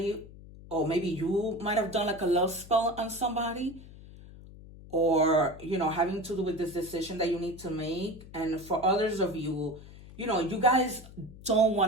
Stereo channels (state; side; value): noise; left; hum, 18 dB below the sound